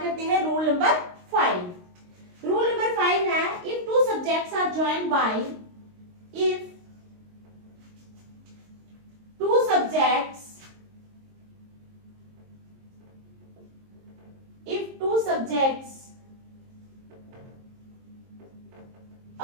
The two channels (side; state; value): left; late; 22 ms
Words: करते हैं रूल नंबर 5। रूल नंबर 5 है, if two subjects are joined by if two subjects